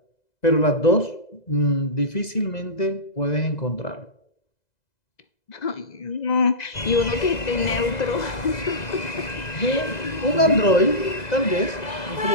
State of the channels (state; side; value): late; right; 2.0 ms